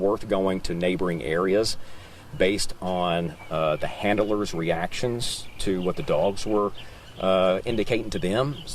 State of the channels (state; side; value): identical; both; correlation 1.00